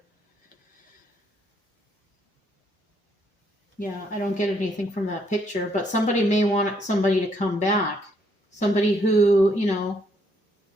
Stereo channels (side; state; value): both; normal; correlation 0.71